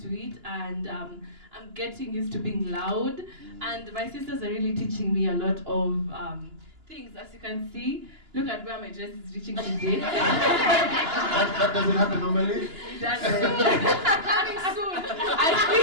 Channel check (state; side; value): late; left; 2.9 ms